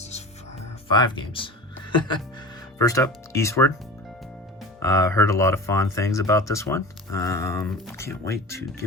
5 games. First up, Eastward. Heard a lot of fond things about this one. Can't wait to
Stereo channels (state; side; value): normal; both; correlation 0.34